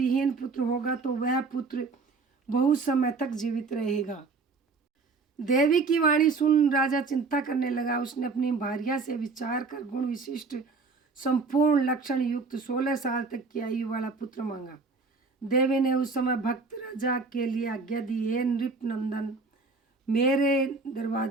पुत्र होगा तो वह पुत्र बहुत समय तक जीवित रहेगा। देवी की वाणी सुन राजा चिंता करने लगा। उसने अपनी भार्या से विचार कर गुण विशिष्ट संपूर्ण लक्षण युक्त 16 साल तक की आयु वाला पुत्र मांगा। देवी ने उस समय भक्त राजा के लिए आज्ञा दी, हे नृप नंदन, मेरे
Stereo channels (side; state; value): left; quieter; 4.3 dB